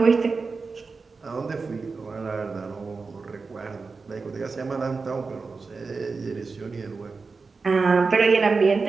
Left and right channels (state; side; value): quieter; left; 4.4 dB